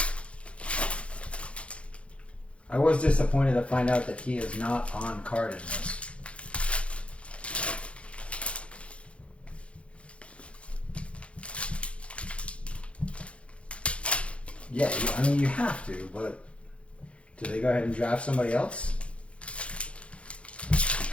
I was disappointed to find out that he is not on card in this. Yeah, I mean, you have to, but do they go ahead and draft somebody else? You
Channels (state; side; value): late; right; 0.061 ms